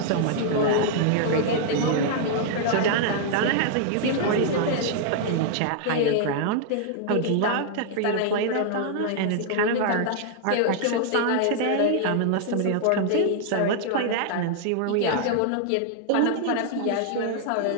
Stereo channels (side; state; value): both; different; correlation -0.01